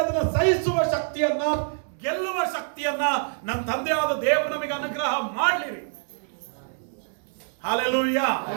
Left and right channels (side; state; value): left; silent; digital silence